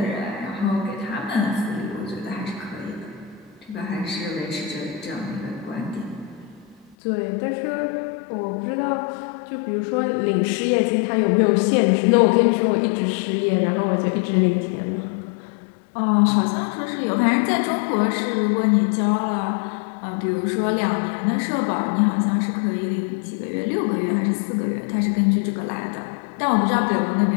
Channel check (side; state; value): right; drops out; at 7.0 s